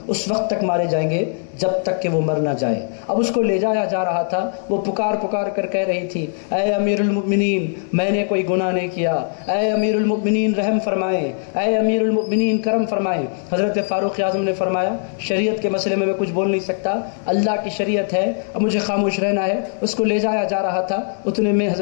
اس وقت تک مارے جائیں گے جب تک کہ وہ مر نہ جائے۔ اب اس کو لے جایا جا رہا تھا، وہ پکار پکار کر کہہ رہی تھی اے امیر المؤمنین میں نے کوئی گناہ نہیں کیا، اے امیر المؤمنین رحم فرمائیں، اے امیر المؤمنین کرم فرمائیں۔ حضرت فاروق اعظم نے فرمایا شریعت کے مسئلے میں کچھ بول نہیں سکتا، اللہ کی شریعت ہے، اب مجھے خاموش رہنا ہے۔ اس کو لے جایا جا رہا تھا، اتنے میں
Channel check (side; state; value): right; silent; digital silence